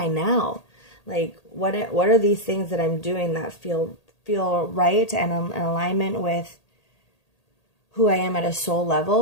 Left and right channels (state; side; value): late; right; 1.8 ms